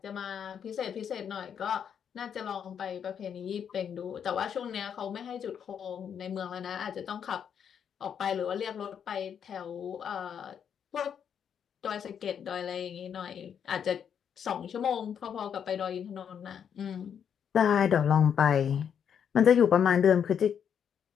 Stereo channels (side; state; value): right; quieter; 8.0 dB